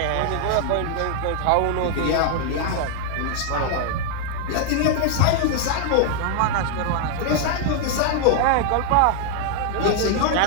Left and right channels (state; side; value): different; both; correlation 0.00